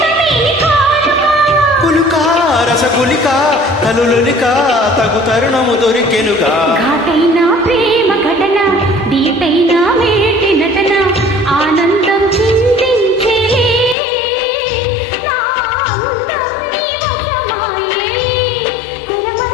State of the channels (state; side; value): drops out; right; at 14.0 s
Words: రసగులిక కలులులిక తగు తరుణము దొరికెనుగా. ఘాటైన ప్రేమ ఘటన దీటైన మేటి నటన ఆనందం చిందించేలే నా అందం నీ వశమాయే